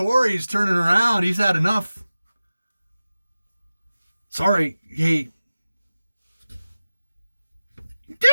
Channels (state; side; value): inverted; both; correlation -0.96